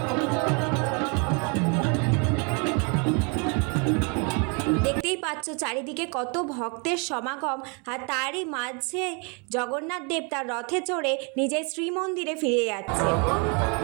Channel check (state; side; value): quieter; left; 34.3 dB